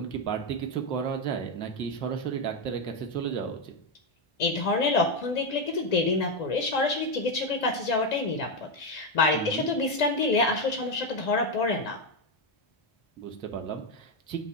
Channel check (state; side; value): late; right; 1.8 ms